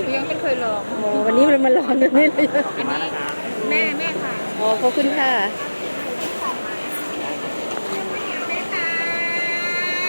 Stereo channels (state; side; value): inverted; both; correlation -1.00